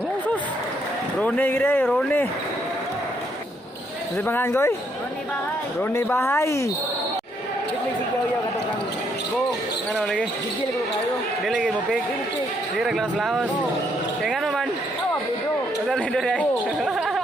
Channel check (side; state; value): both; normal; correlation 0.72